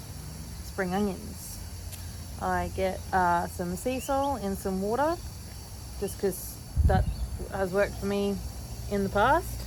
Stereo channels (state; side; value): identical; both; correlation 1.00